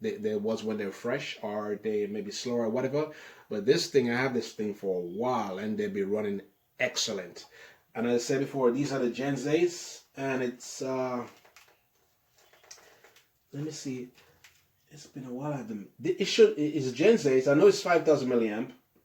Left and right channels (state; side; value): identical; both; correlation 1.00